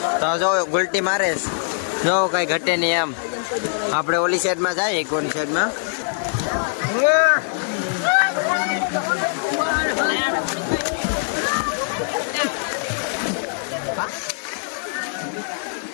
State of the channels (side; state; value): right; silent; digital silence